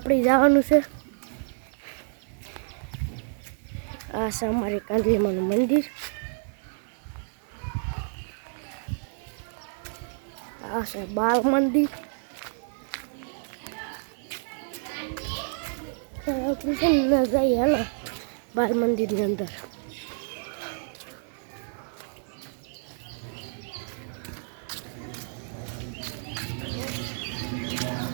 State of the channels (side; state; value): left; silent; 58 dB below the other